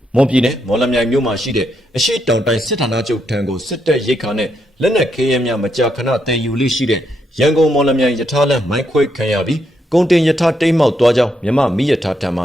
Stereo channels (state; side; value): normal; both; correlation 0.79